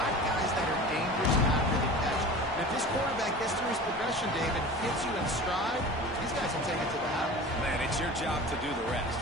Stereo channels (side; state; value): both; normal; correlation 0.37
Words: guys that are dangerous after the catch. And if this quarterback gets through his progression, David, hits you in stride, these guys will take it to the house. Man, it's your job to do the rest,